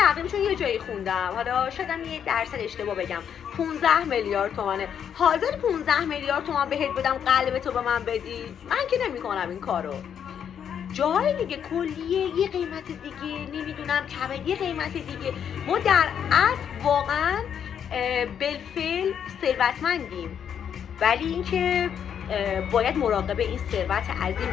چون یه جایی خوندم، حالا شایدم یه درصد اشتباه بگم، 15 میلیارد تومانه. حاضر 15 میلیارد تومان بهت بدم قلب تو به من بدی؟ من که نمی‌کنم این کارو. جای دیگه کلیه یه قیمت دیگه، نمیدونم کبد یه قیمت دیگه. ما در اصل واقعا بالفعل ثروتمندیم، ولی اینکه باید مراقب این ثروت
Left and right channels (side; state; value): right; quieter; 8.4 dB